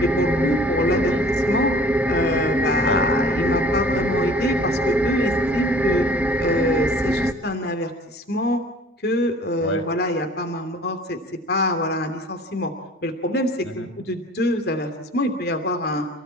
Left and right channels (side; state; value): both; normal; correlation 0.49